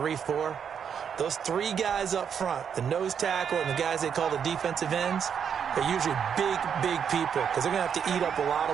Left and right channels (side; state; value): left; quieter; 7.6 dB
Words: those 3 guys up front, the nose tackle and the guys they call the defensive ends, they're usually big people, because they're going to have to eat up a lot